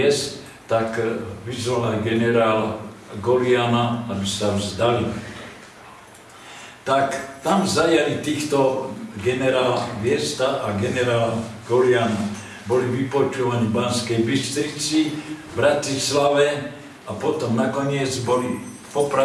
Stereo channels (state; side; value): identical; both; correlation 1.00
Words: tak vyzval aj generála Goliána, aby sa vzdali. Tak tam zajali týchto generála Viesta a generála Goliána. Boli vypočúvaní v Banskej Bystrici, v Bratislave a potom nakoniec boli